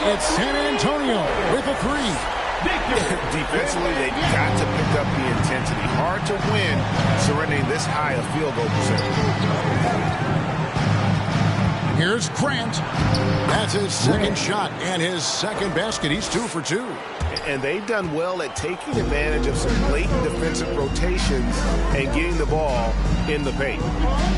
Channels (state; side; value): identical; both; correlation 1.00